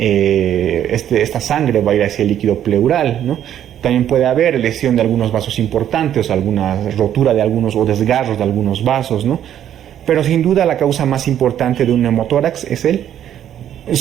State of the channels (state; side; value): quieter; left; 10.5 dB